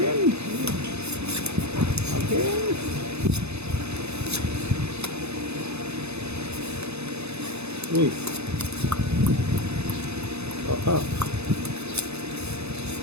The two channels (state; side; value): late; left; 0.80 ms